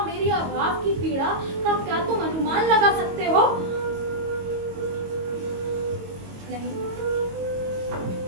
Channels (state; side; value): late; left; 22 ms